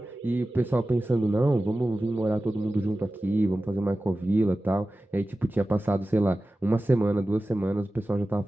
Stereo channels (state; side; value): normal; both; correlation 0.95